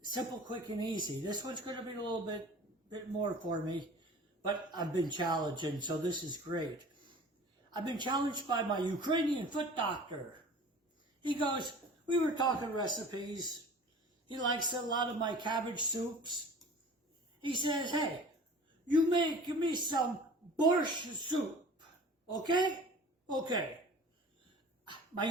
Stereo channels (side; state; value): both; normal; correlation 0.43